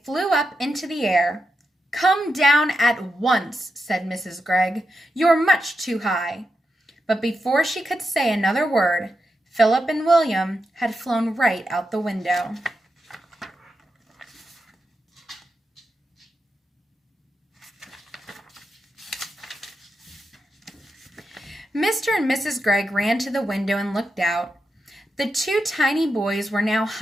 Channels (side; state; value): both; normal; correlation 0.87